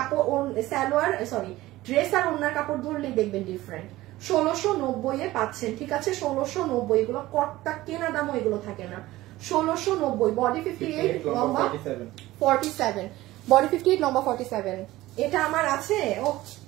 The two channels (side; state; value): left; quieter; 17.2 dB